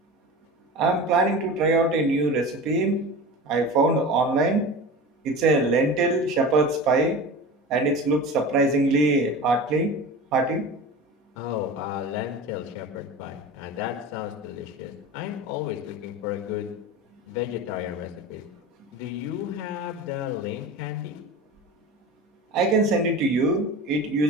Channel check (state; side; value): normal; both; correlation 0.32